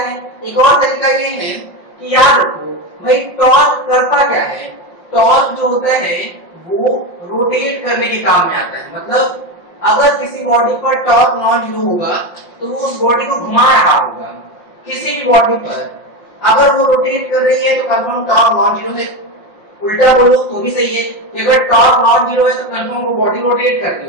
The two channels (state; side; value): late; right; 5.7 ms